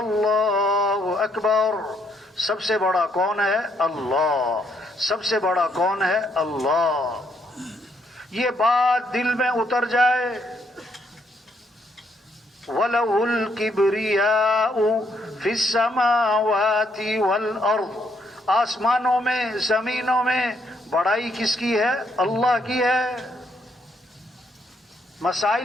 اکبر. سب سے بڑا کون ہے؟ اللہ. سب سے بڑا کون ہے؟ اللہ. یہ بات دل میں اتر جائے. وَلَهُ الْكِبْرِيَاءُ فِي السَّمَاوَاتِ وَالْأَرْضِ. آسمانوں میں, زمینوں میں بڑائی کس کی ہے؟ اللہ کی ہے.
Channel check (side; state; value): both; normal; correlation 0.73